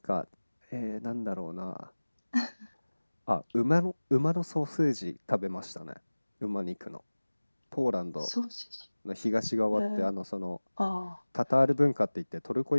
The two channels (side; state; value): both; inverted; correlation -1.00